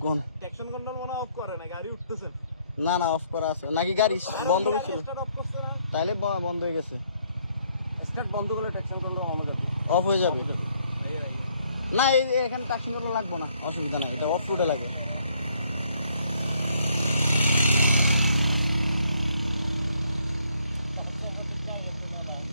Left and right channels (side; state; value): both; inverted; correlation -0.68